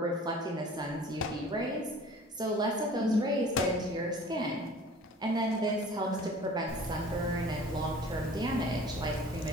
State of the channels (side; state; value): both; normal; correlation 0.46